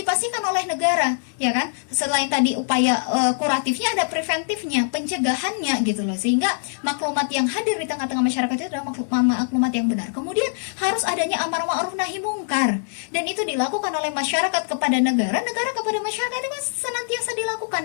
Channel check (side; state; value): right; silent; digital silence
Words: oleh negara, ya kan? Selain tadi upaya kuratifnya, ada preventifnya, pencegahannya gitu loh. Sehingga maklumat yang hadir di tengah-tengah masyarakat itu adalah maklumat yang benar. Kemudian harus adanya amar ma'ruf nahi mungkar, dan itu dilakukan oleh masyarakat kepada negara, negara kepada masyarakat. Itu kan senantiasa dilakukan